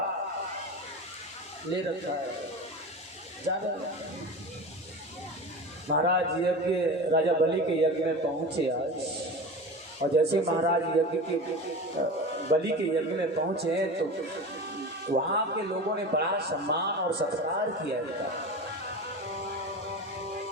ले रखा है। महाराज यज्ञ, राजा बलि के यज्ञ में पहुंचे आज, और जैसे महाराज यज्ञ के बलि के यज्ञ में पहुंचे तो वहां के लोगों ने बड़ा सम्मान और सत्कार किया था।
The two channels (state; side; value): normal; both; correlation 0.30